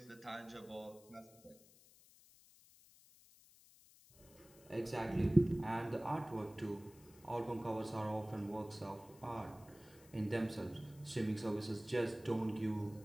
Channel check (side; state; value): left; noise; hiss, 24 dB below the sound